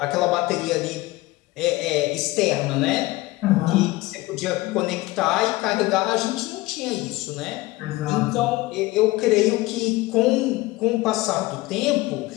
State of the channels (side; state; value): right; quieter; 19.8 dB